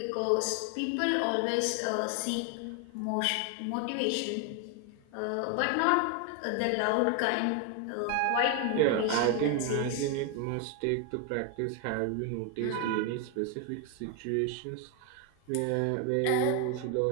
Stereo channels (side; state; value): both; different; correlation 0.01